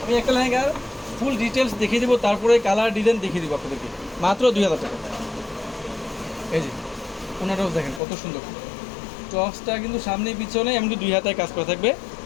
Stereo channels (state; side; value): drops out; right; at 8.0 s